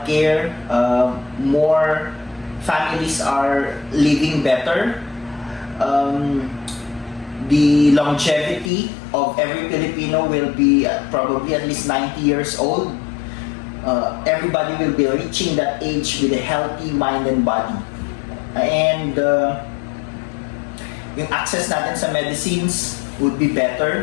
More families are living better. The longevity of every Filipino will be probably at least 90 years old. Everybody will be reaching that age with a healthy mind and body. And yung access natin sa medicines would be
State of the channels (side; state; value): right; drops out; at 8.7 s